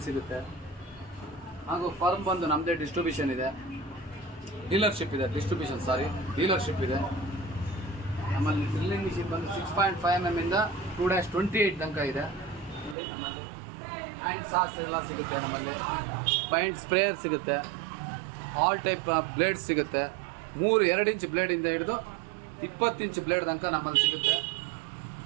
ಸಿಗುತ್ತೆ. ಹಾಗೂ ಫರ್ಮ್ ಬಂದು ನಮ್ಮದೇ ಡಿಸ್ಟ್ರಿಬ್ಯೂಷನ್ ಇದೆ, ಡೀಲರ್ಶಿಪ್ ಇದೆ. ನಮ್ಮಲ್ಲಿ ಡ್ರಿಲ್ಲಿಂಗ್ ಮಿಷಿನ್ ಬಂದು 6.5 mm ಇಂದ 2-28 ತನಕ ಇದೆ. ನೋಡಿ ನಮ್ಮಲ್ಲಿ ಹ್ಯಾಂಡ್ ಸಾಸ್ ಎಲ್ಲ ಸಿಗುತ್ತೆ. ನಮ್ಮಲ್ಲಿ ಪೈಂಟ್ ಸ್ಪ್ರೇಯರ್ ಸಿಗುತ್ತೆ. ಆಲ್ ಟೈಪ್ ಬ್ಲೇಡ್ಸ್ ಸಿಗುತ್ತೆ. 2 ಇಂಚ್ ಬ್ಲೇಡಿಂದ ಹಿಡಿದು 20 ಇಂಚ್ ಬ್ಲೇಡ್ ತನಕ ನಮ್ಮಲ್ಲಿ ಸಿಗುತ್ತೆ.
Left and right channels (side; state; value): left; drops out; at 13.0 s